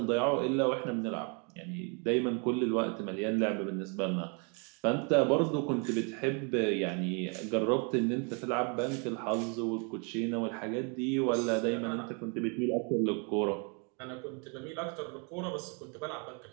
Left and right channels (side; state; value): left; quieter; 35.6 dB